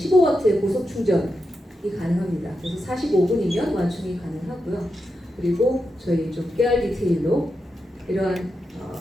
고속 충전이 가능합니다. 그래서 45분이면 완충이 가능하고요. 그리고 저희 좀 깨알 디테일로 이러한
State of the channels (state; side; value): normal; both; correlation 0.87